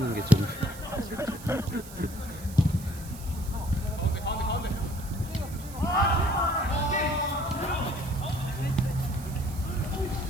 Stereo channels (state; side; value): noise; right; hiss, 17 dB below the sound